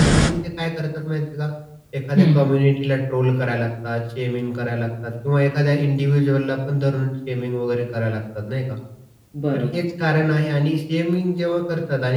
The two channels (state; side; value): identical; both; correlation 1.00